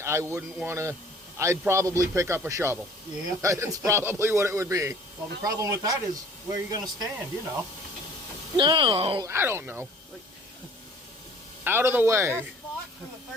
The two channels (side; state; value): both; normal; correlation 0.51